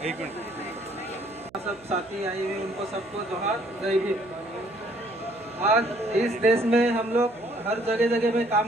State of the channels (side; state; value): right; noise; hum, 26 dB below the sound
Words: मिनट। सब साथी आए हुए उनको सबको जोहार, जय भीम। आज इस देश में हम लोग हर जगह जगह में